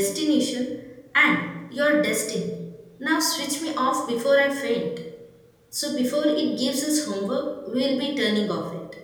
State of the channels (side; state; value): both; identical; correlation 1.00